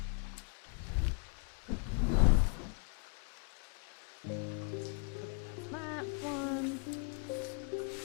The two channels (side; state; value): right; quieter; 37.1 dB